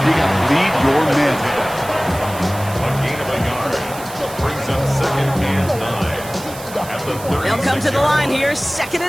you got to lead your men. They'll come to the line here, second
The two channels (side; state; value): right; noise; hiss, 15 dB below the sound